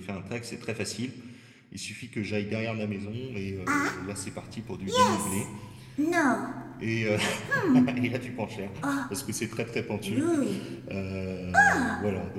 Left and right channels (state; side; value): identical; both; correlation 1.00